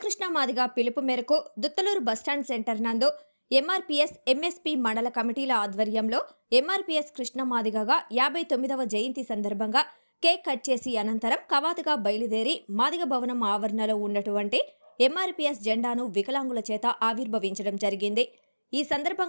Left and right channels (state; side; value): inverted; both; correlation -1.00